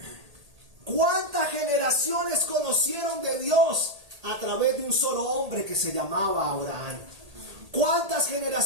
¿Cuántas generaciones conocieron de Dios a través de un solo hombre que se llamaba Abraham? ¿Cuántas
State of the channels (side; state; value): left; late; 1.8 ms